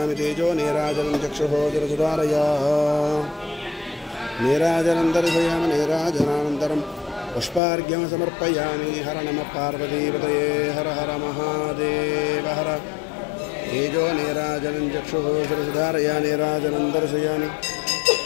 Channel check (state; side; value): drops out; right; at 7.6 s